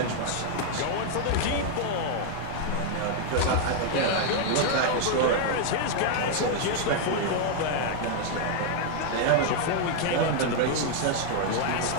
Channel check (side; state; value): both; different; correlation 0.00